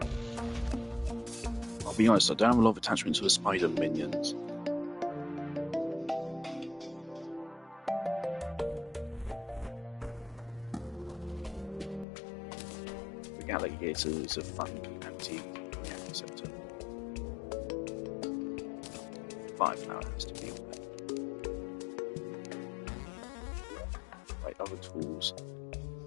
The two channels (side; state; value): right; drops out; at 12.1 s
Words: I'll be honest, I don't have a lot of attachment to the spider minions. The alligator is a fun anti-receptor. Fireflower has to be on there. Right, other tools.